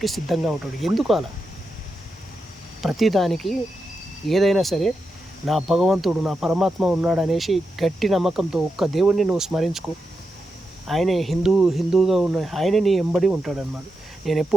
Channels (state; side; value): normal; both; correlation 0.87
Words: సిద్ధంగా ఉంటాడు. ఎందుకు అలా? ప్రతిదానికి ఏదైనా సరే నా భగవంతుడు, నా పరమాత్మ ఉన్నాడు అనేసి గట్టి నమ్మకంతో ఒక్క దేవుడిని నువ్వు స్మరించుకో. ఆయనే హిందూగా ఉన్న ఆయనే నీ ఎంబడి ఉంటాడన్నమాట. నేను